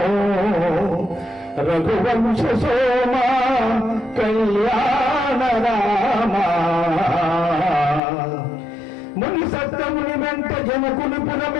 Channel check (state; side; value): drops out; right; at 8.0 s